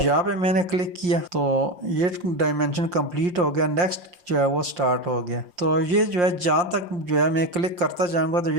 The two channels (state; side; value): late; left; 5.7 ms